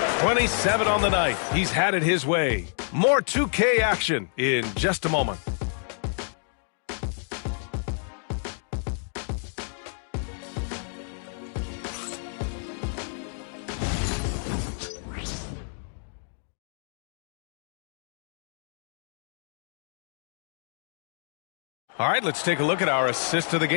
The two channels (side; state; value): right; silent; digital silence